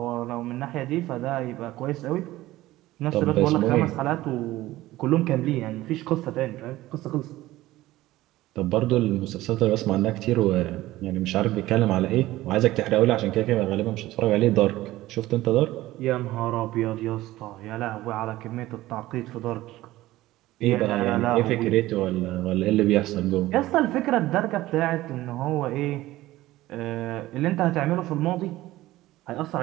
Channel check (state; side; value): quieter; left; 16.7 dB